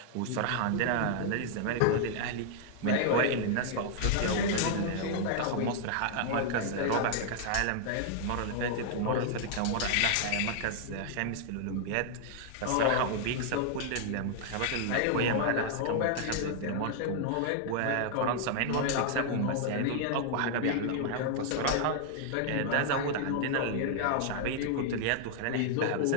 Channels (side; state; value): both; different; correlation -0.01